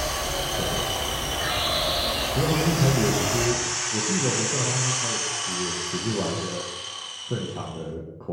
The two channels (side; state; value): both; identical; correlation 1.00